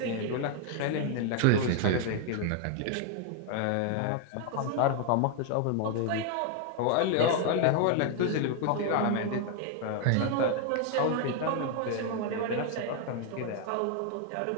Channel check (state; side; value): different; both; correlation 0.00